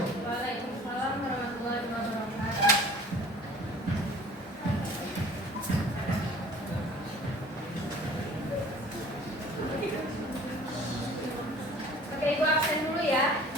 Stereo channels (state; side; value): normal; both; correlation 0.48